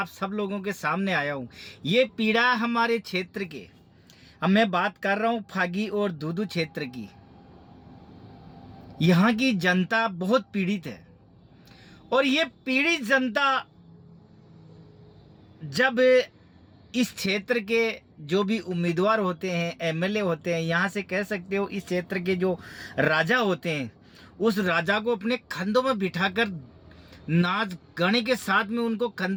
सब लोगों के सामने आया हूँ। ये पीड़ा हमारे क्षेत्र के, अब मैं बात कर रहा हूँ फागी और दूदू क्षेत्र की। यहाँ की जनता बहुत पीड़ित है और ये पीड़ित जनता जब इस क्षेत्र के जो भी उम्मीदवार होते हैं, एमएलए होते हैं, यहाँ से कह सकते हो इस क्षेत्र के जो राजा होते हैं, उस राजा को अपने कंधों में बिठाकर नाच गाने के साथ में उनको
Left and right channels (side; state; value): both; identical; correlation 1.00